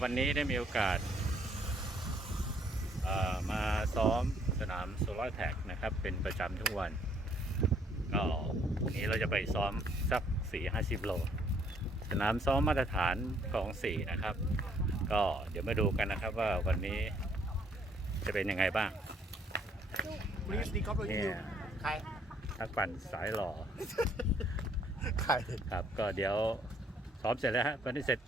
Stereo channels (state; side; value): normal; both; correlation 0.65